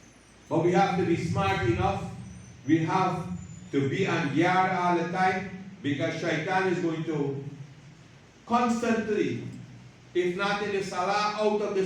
But we have to be smart enough. We have to be on guard all the time, because shaitan is going to constantly, if not in the salah, out of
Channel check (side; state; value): both; identical; correlation 1.00